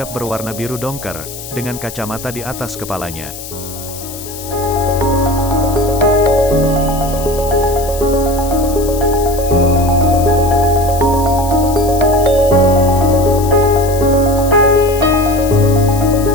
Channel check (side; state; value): left; noise; hiss, 12 dB below the sound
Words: berwarna biru dongker, dengan kacamata di atas kepalanya.